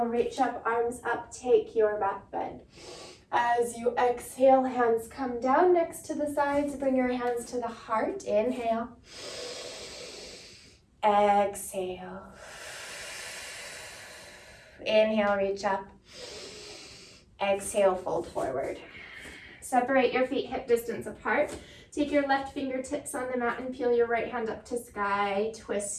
reach up, arms up, take your back bend. As you exhale, hands come down next to the sides, bring your hands to the heart, inhale. Exhale. Inhale, reach up. Exhale, fold forward. Separate your feet hip distance apart. Take your left fingertips on the mat and peel your right hand up to sky.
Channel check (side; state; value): both; identical; correlation 1.00